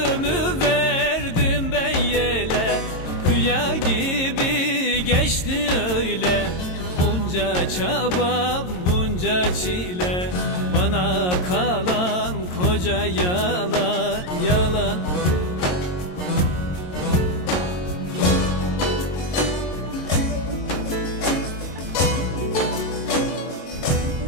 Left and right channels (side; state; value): right; late; 22 ms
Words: verdim ben yele, rüya gibi geçti öyle. Bunca çaba, bunca çile, bana kalan koca yalan, yalan.